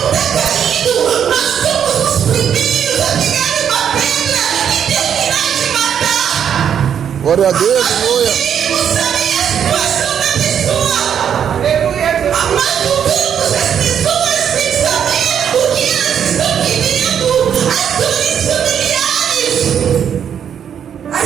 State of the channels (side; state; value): left; quieter; 8.5 dB